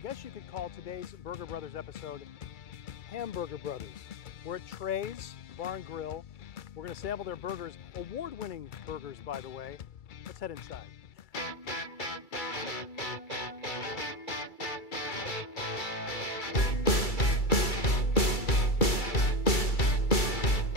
you could call today's Burger Brothers episode Hamburger Brothers. We're at Treys Bar and Grill. We're going to sample their burgers, award-winning burgers, by the way. Let's head inside.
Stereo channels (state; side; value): late; right; 2.3 ms